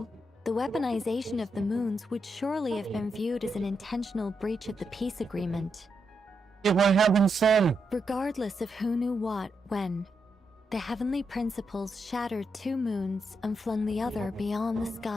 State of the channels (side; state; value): both; normal; correlation 0.83